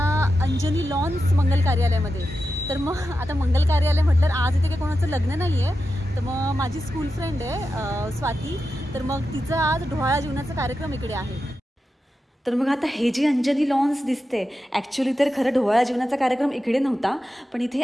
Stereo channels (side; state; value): both; normal; correlation 0.90